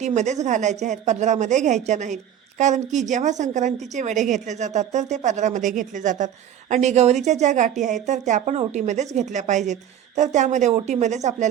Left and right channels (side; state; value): left; quieter; 10.1 dB